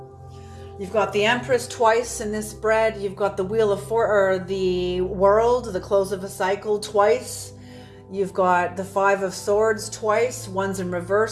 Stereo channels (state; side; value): identical; both; correlation 1.00